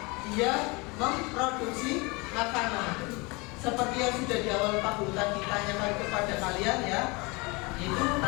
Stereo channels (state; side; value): quieter; right; 26.8 dB